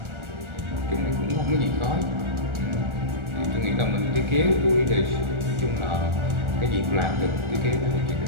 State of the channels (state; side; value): late; left; 1.4 ms